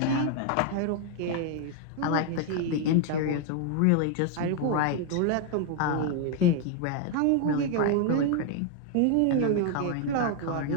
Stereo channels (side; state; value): both; different; correlation 0.01